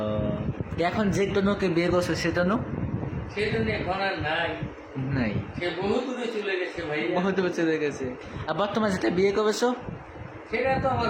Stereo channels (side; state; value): both; identical; correlation 1.00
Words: এখন যে তনুকে বিয়ে করছে সে তনু সেই জন্য এখন আর নাই, নাই, সে বহু দূরে চলে গেছে ভাইয়া। বহুত চলে গেছে। আর বর্তমানে যেটা বিয়ে করেছো সেটা তো আমার